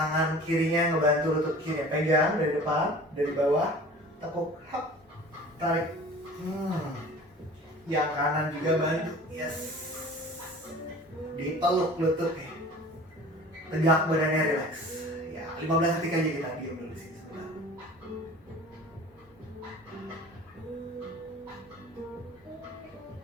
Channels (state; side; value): normal; both; correlation 0.43